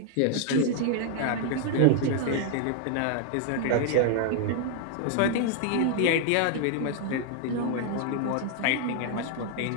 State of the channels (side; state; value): both; different; correlation 0.00